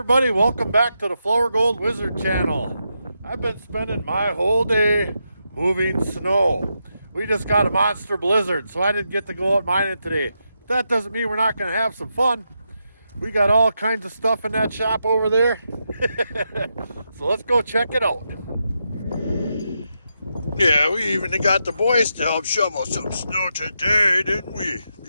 welcome back to the Flourgoldwizards channel. I've been spending my whole day moving snow. We just got a monster blizzard, so I didn't get to go out mining today. That doesn't mean we're not going to have some fun. We got all kinds of stuff in that shop over there. So let's go check it out. Yeah, we even got the boys to help shovel some snow today, didn't we?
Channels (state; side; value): inverted; both; correlation -0.85